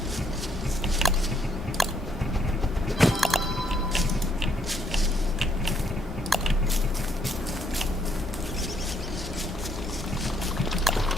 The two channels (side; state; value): both; normal; correlation 0.71